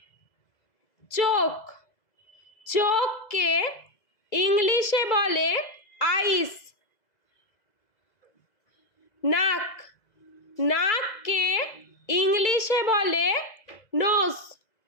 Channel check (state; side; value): late; right; 2.0 ms